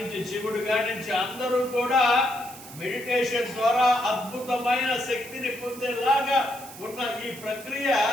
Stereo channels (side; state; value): right; noise; hiss, 16 dB below the sound